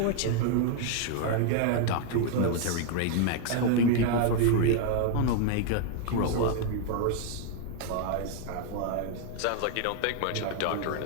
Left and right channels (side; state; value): both; different; correlation 0.00